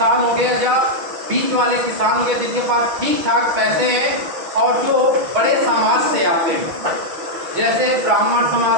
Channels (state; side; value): late; left; 6.2 ms